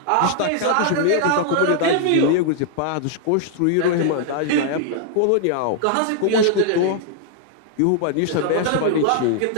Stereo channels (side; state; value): both; different; correlation -0.01